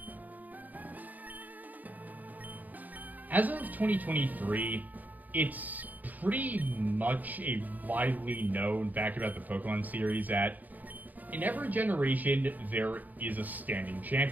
As of 2023, it's pretty much a widely known fact about the Pokemon series that in every generation, there is a standing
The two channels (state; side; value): late; left; 0.082 ms